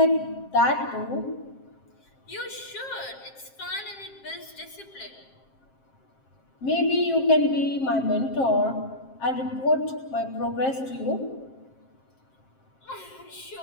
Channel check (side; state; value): right; late; 7.6 ms